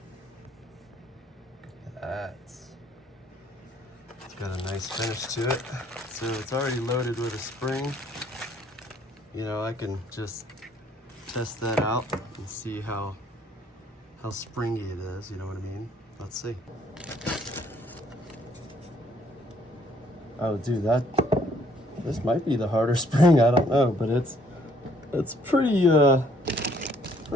It's got a nice finish to it. So it's already loaded with a spring. You know, I can just test that out and see how springy it is, you know what I mean? Let's see. Oh, dude, this might be the harder spring. I don't know, but it's pretty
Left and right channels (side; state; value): both; normal; correlation 0.64